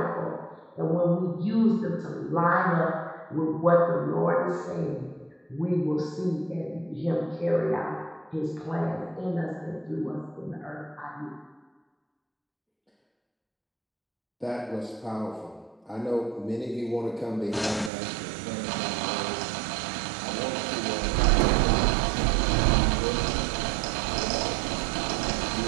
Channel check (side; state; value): left; drops out; at 17.9 s